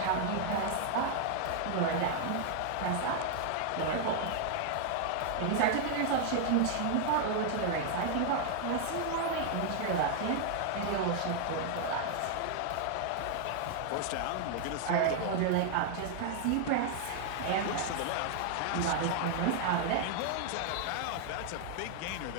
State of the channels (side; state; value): both; different; correlation 0.00